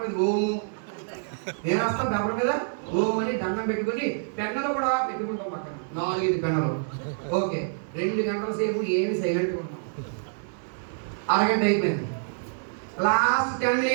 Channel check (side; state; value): left; silent; digital silence